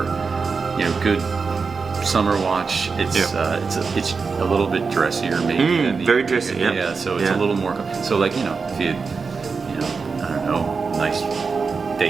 good summer watch, it's a little bit dressier maybe than the very dressy. Yeah, so it's a little more so like if you I don't know, nice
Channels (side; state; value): left; quieter; 4.9 dB